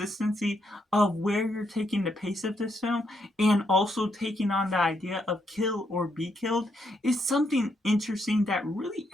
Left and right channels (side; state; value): both; normal; correlation 0.77